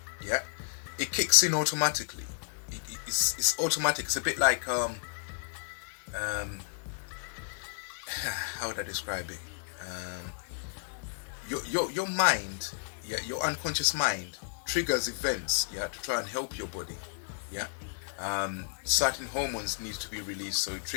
Yeah, it kicks in automatically. It's automatic. It's a bit like how would I describe it? Your mind, yeah, your unconscious mind triggers events, yeah, to try and help your body. Yeah, certain hormones need to be released, so it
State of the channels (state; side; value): silent; right; digital silence